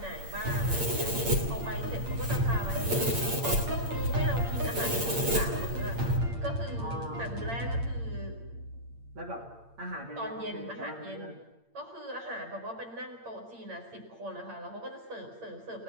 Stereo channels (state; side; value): late; left; 8.7 ms